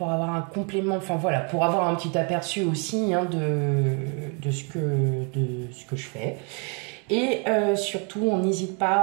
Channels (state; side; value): quieter; left; 35.6 dB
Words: avoir un complément, enfin voilà, pour avoir un petit aperçu aussi de ce que je fais. Et surtout, on n'hésite